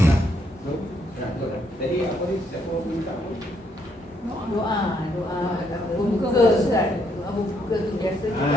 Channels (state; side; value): normal; both; correlation 0.72